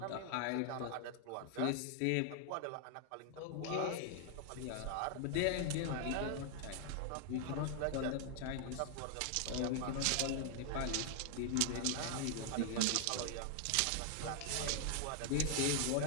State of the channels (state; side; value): different; both; correlation 0.00